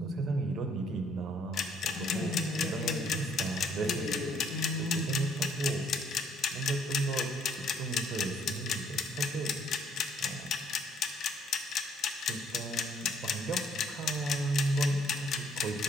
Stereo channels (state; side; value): normal; both; correlation 0.64